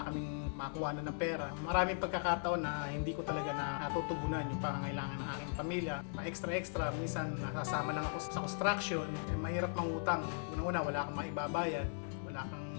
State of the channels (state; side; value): silent; right; digital silence